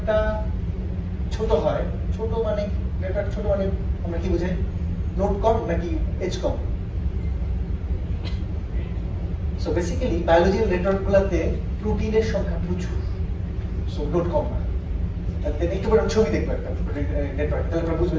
ছোট হয়, ছোট মানে নেটওয়ার্ক ছোট মানে আমরা কি বুঝাই? নোড কম নাকি এজ কম? সো বেসিক্যালি বায়োলজিক্যাল নেটওয়ার্কগুলোতে প্রোটিনের সংখ্যা প্রচুর, সো নোড কম না। একটু বড় ছবি দেখবো একটা নেটওয়ার্ক, তাহলে আপনারা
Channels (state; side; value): identical; both; correlation 1.00